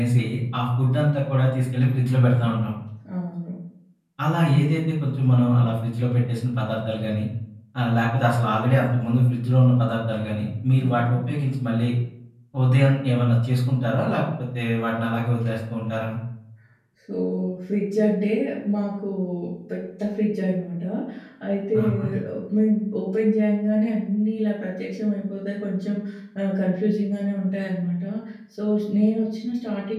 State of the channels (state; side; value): identical; both; correlation 1.00